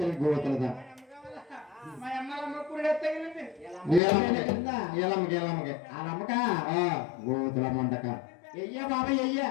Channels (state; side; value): drops out; right; at 4.0 s